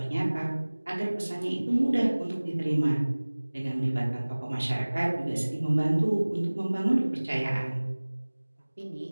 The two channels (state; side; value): inverted; both; correlation -1.00